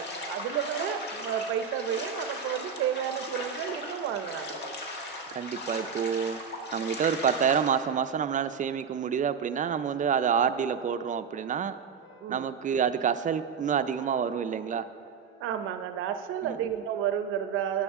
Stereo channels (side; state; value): left; quieter; 6.7 dB